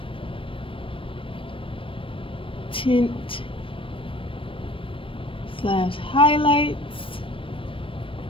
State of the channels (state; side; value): late; right; 0.25 ms